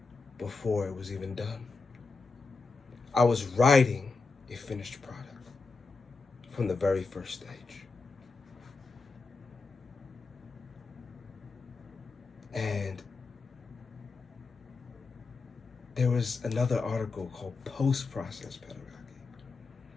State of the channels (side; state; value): right; quieter; 4.2 dB